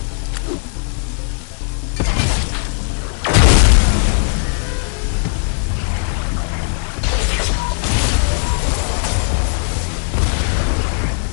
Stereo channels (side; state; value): right; silent; digital silence